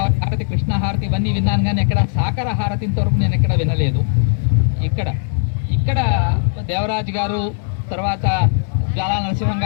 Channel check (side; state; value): right; silent; digital silence